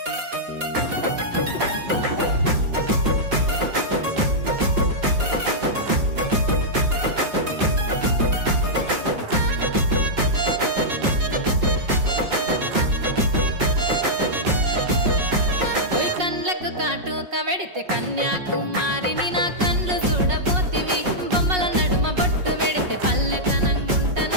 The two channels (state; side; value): late; left; 5.5 ms